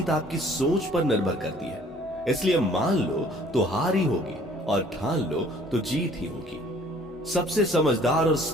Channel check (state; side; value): normal; both; correlation 0.56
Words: आपकी सोच पर निर्भर करती है, इसलिए मान लो तो हार ही होगी और ठान लो तो जीत ही होगी। सबसे समझदार और